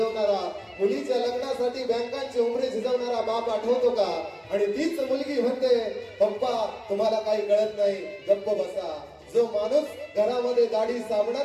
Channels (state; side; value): identical; both; correlation 1.00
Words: मुलीच्या लग्नासाठी बँकांची उमरे झिजवणारा बाप आठवतो का? आणि तीच मुलगी म्हणते पप्पा तुम्हाला काही कळत नाही, गप्प बसा. जो माणूस घरामध्ये दाढी